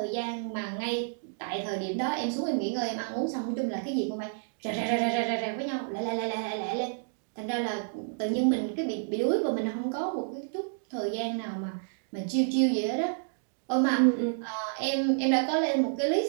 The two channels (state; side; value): silent; left; digital silence